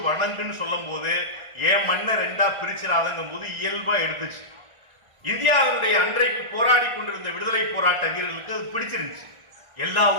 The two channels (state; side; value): late; left; 1.3 ms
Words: வணங்குன்னு சொல்லும் போது ஏன் மண்ணை 2ஆ பிரிச்சிடாதங்கும் போது இயல்பா எடுத்துச்சு. இந்தியாவினுடைய அன்றைக்கு போராடி கொண்டிருந்த விடுதலை போராட்ட வீரர்களுக்கு அது பிடிச்சிருந்துச்சு. எல்லா